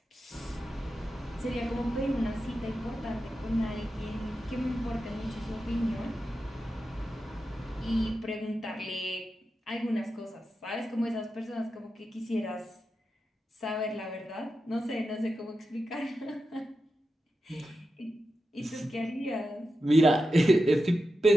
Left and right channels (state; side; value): normal; both; correlation 0.90